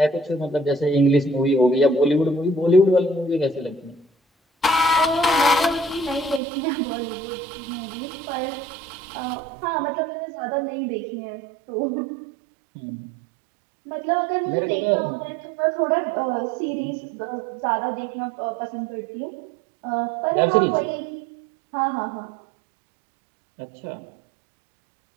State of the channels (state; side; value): drops out; left; at 6.4 s